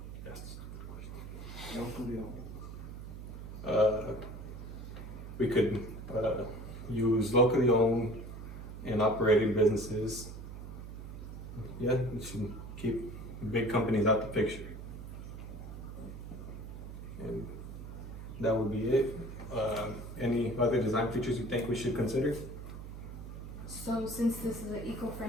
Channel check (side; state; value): right; noise; hum, 10 dB below the sound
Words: Locally we could use locally owned and operated businesses. Yeah, we should keep big companies out the picture. And that would be it. Any other design features you think we should consider? So since this is an